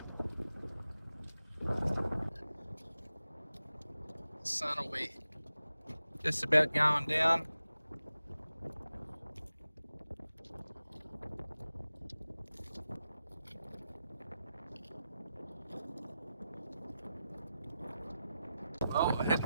The sun will be just about going down. Well,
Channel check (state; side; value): inverted; both; correlation -0.92